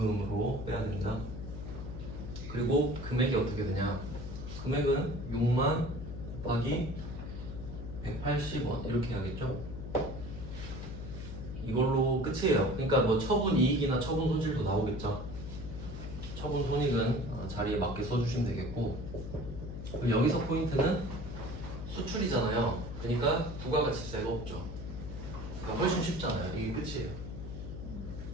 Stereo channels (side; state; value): left; noise; hum, 8 dB below the sound